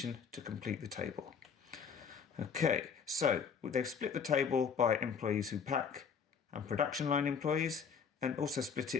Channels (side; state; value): right; quieter; 6.4 dB